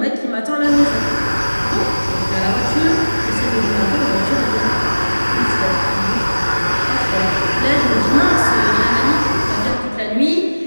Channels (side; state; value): both; inverted; correlation -1.00